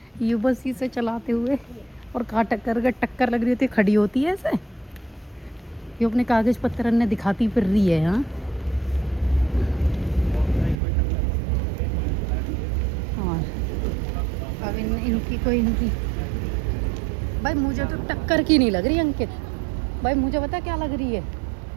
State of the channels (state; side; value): drops out; left; at 10.8 s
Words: ये बस इसे चलाते हुए, और कहाँ टक्कर लग रही होती है खड़ी होती है ऐसे। ये अपने कागज पत्र ने दिखाती फिर रही है। हाँ और अब इनकी भाई मुझे तो टक्कर की नहीं लग रही अंकित भाई। मुझे पता क्या लग रही है,